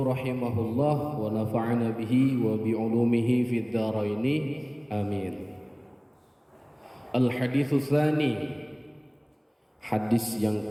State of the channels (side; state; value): both; identical; correlation 1.00